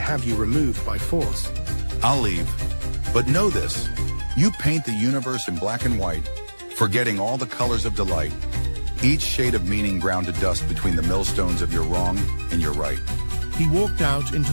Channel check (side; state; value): both; inverted; correlation -1.00